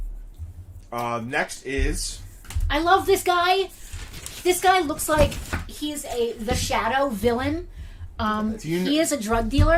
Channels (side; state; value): both; identical; correlation 1.00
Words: Next is. I love this guy. This guy looks like he's the Shadow villain. He is a drug